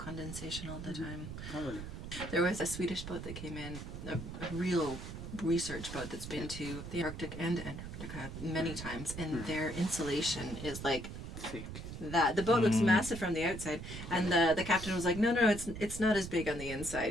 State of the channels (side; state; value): right; noise; rumble, 9 dB below the sound